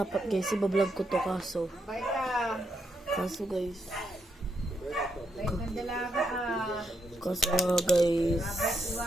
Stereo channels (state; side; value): normal; both; correlation 0.79